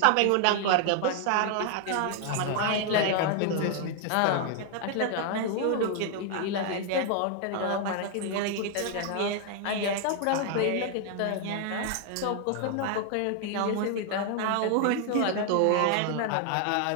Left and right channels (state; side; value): different; both; correlation 0.00